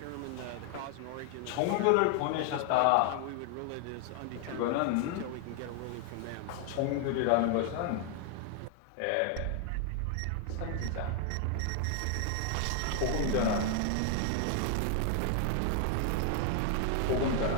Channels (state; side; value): different; both; correlation 0.00